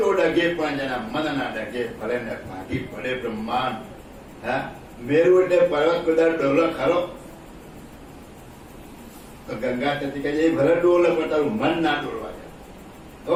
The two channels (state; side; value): identical; both; correlation 1.00